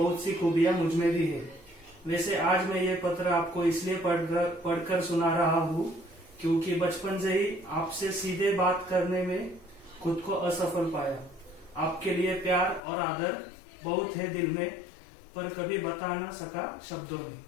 सी खूबियां मुझ में भी है। वैसे आज मैं ये पत्र आपको इसलिए पढ़कर सुना रहा हूँ क्योंकि बचपन से ही आपसे सीधे बात करने में खुद को असफल पाया। आपके लिए प्यार और आदर बहुत है दिल में, पर कभी बता ना सका शब्दों में।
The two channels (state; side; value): drops out; right; at 12.8 s